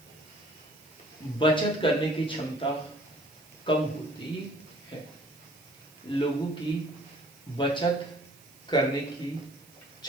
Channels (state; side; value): noise; right; hiss, 24 dB below the sound